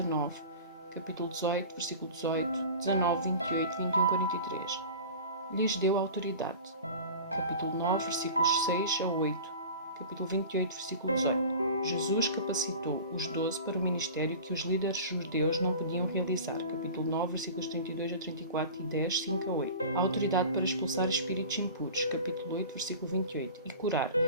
Capítulo 18, versículo 18, 19, 28, 21, 43. Lhes deu autoridade. Capítulo 9, versículos 6 a 8. Capítulo 28, versículo 18. Jesus capacitou os 12 para o ministério que os líderes judeus não podiam realizar. Capítulo 9, versículos 32 a 34 e 10, 5 a 8. A autoridade para expulsar espíritos impuros. Capítulo 8, versículo 28. E curar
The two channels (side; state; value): both; inverted; correlation -0.37